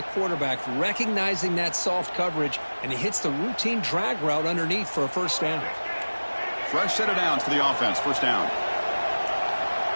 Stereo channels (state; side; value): inverted; both; correlation -1.00